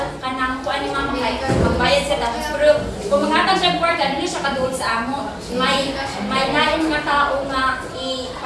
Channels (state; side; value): identical; both; correlation 1.00